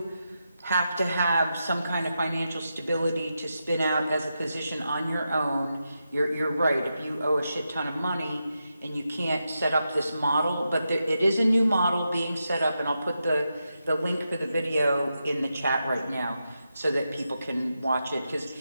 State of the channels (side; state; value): both; inverted; correlation -0.87